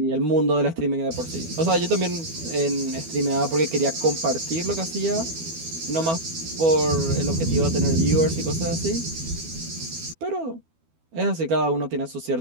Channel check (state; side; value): late; left; 12 ms